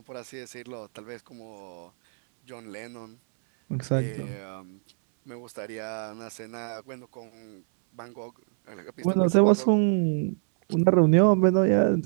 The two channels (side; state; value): left; silent; 61 dB below the other